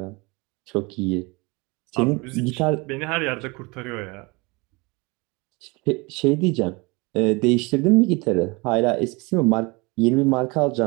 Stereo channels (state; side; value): quieter; left; 26.5 dB